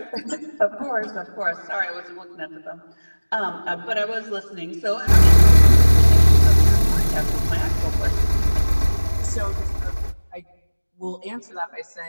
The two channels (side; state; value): both; inverted; correlation -1.00